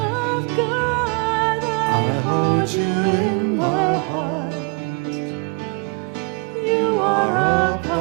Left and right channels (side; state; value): left; quieter; 32.3 dB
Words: hold you in my heart. You are a